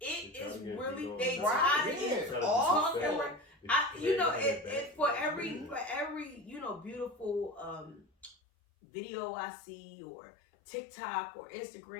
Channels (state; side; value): drops out; right; at 8.3 s